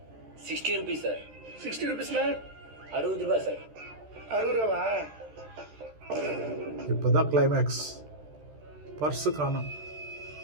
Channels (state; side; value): late; left; 13 ms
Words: 60 rupees சார். 60 rupeesனா 60 ரூபாய் சார். 60 ரூபாவா? இப்போதான் கிளைமேக்ஸ். பர்ஸு காணும்.